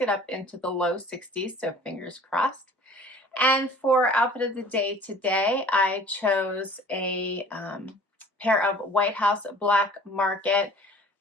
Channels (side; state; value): both; normal; correlation 0.48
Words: up into the low 60s, so fingers crossed. And for outfit of the day today, I chose a pair of White House Black Market